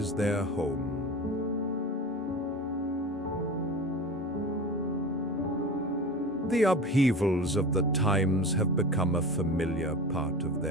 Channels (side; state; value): both; normal; correlation 0.32